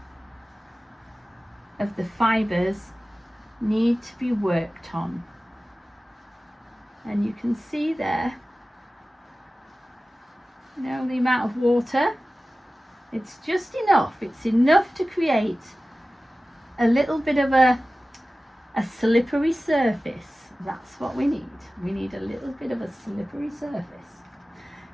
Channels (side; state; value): both; normal; correlation 0.96